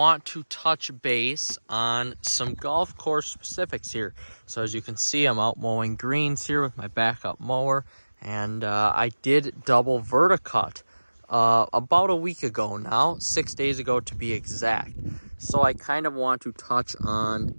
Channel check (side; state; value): both; inverted; correlation -1.00